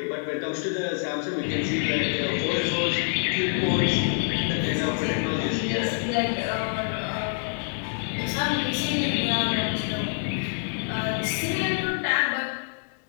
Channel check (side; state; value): right; silent; 61 dB below the other